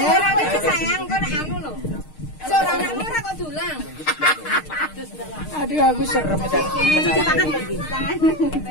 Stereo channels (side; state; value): right; late; 6.5 ms